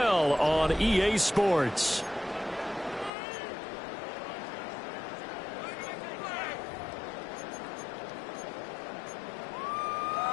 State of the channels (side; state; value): right; drops out; at 3.1 s